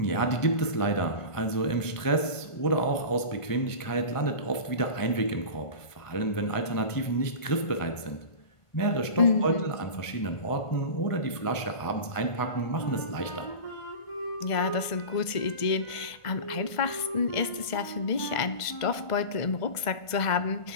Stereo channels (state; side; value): late; right; 1.5 ms